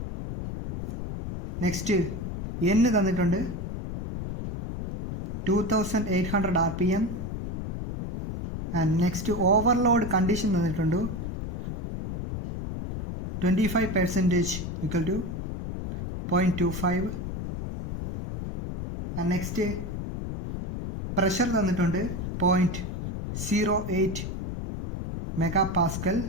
Next n തന്നിട്ടുണ്ട് 2800 rpm. And next overload condition തന്നിട്ടുണ്ട് 25% equal to 0.25. and next pressure തന്നിട്ടുണ്ട് 0.08 megapascal.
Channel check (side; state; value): left; noise; rumble, 6 dB below the sound